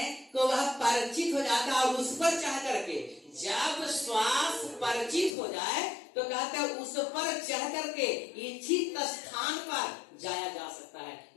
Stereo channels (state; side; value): drops out; right; at 5.3 s